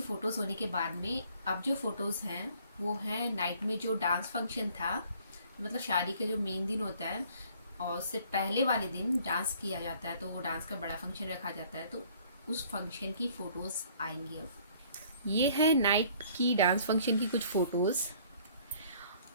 फ़ोटोज़ होने के बाद में अब जो फ़ोटोज़ हैं वो है नाइट में जो डांस फंक्शन था, मतलब शादी के जो मेन दिन होता है और उससे पहले वाले दिन डांस किया जाता है, तो वो डांस का बड़ा फंक्शन रखा जाता है, तो उस फंक्शन की फ़ोटोज़ आएंगी। अब ये है नाइट की डांस फंक्शन की कुछ फ़ोटोज़।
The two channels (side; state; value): both; inverted; correlation -0.57